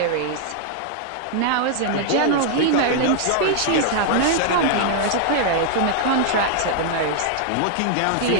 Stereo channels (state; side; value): different; both; correlation -0.01